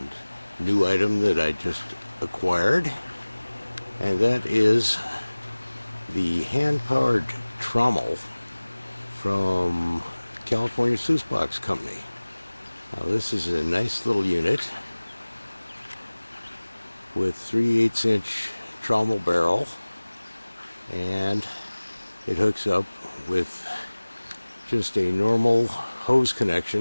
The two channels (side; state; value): both; inverted; correlation -1.00